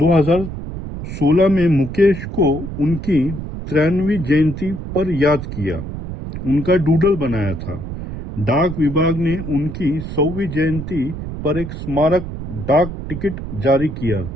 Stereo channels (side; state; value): right; noise; rumble, 8 dB below the sound